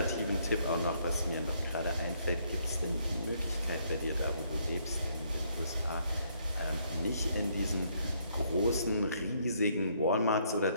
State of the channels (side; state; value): both; inverted; correlation -0.70